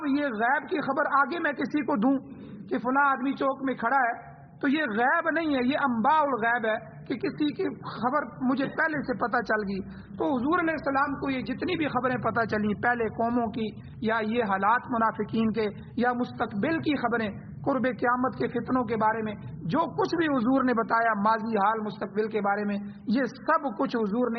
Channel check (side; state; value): both; identical; correlation 1.00